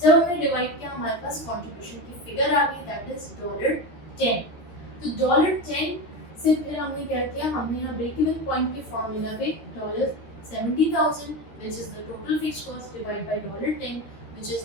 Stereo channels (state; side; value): late; right; 13 ms